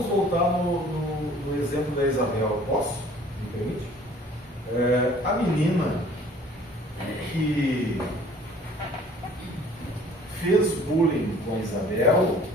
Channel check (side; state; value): both; normal; correlation 0.52